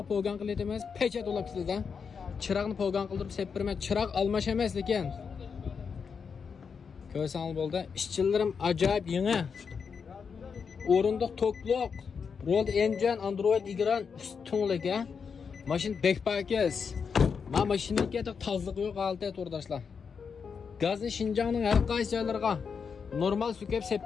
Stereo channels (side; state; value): right; quieter; 6.1 dB